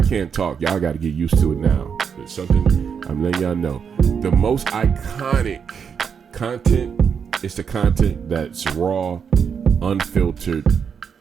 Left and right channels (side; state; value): left; quieter; 6.8 dB